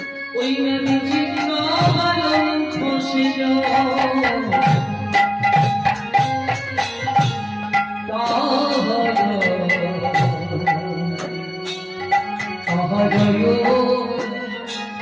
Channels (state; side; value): identical; both; correlation 1.00